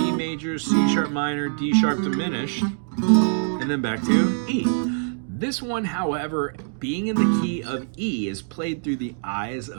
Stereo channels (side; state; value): left; silent; digital silence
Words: major, C sharp minor, D sharp diminished, and then back to E. This one, however, being in the key of E, is played through the eyes